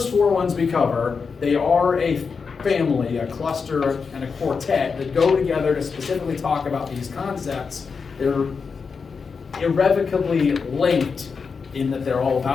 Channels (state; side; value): quieter; right; 5.3 dB